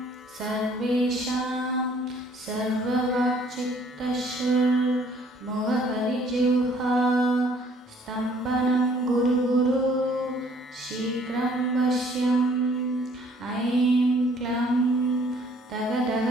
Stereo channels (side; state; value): both; normal; correlation 0.60